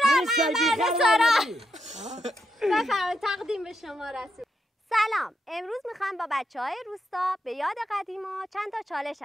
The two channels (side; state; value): both; normal; correlation 0.82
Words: رسول بفرمایید تقدیم به شما رسول. سلام، امروز میخوام با بچه‌های روستا به یاد قدیما چند تا چالش